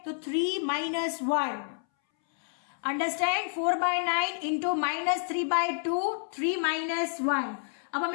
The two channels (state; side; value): silent; right; 58 dB below the other